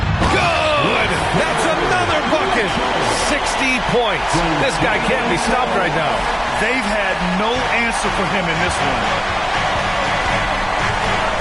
Good! That's another bucket! 60 points. This guy can't be stopped right now. They've had no answer for him in this one.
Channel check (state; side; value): identical; both; correlation 1.00